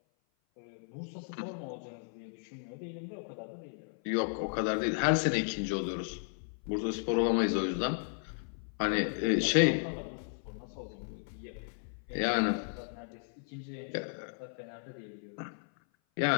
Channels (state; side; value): silent; right; 55 dB below the other